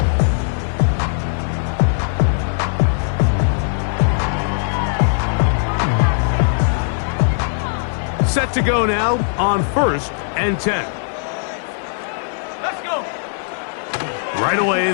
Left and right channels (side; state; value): right; silent; digital silence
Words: Set to go now on 1st and 10. Let's go. Right away,